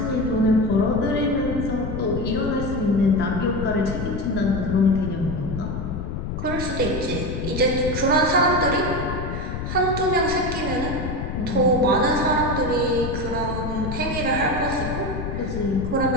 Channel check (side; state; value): left; noise; rumble, 5 dB below the sound